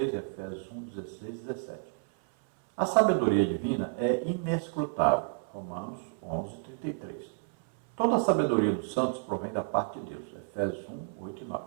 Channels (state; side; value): silent; left; 57 dB below the other